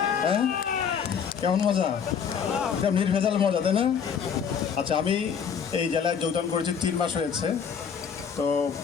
হ্যাঁ, কেমন মজা? এটা নির্ভেজাল মজা, তাই না? আচ্ছা, আমি এই জেলায় যোগদান করেছি 3 মাস হয়েছে। তো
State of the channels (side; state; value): right; quieter; 7.1 dB